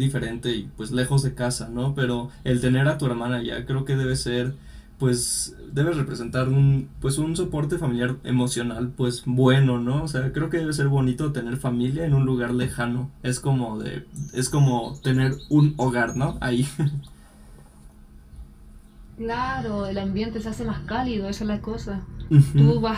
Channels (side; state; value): both; identical; correlation 1.00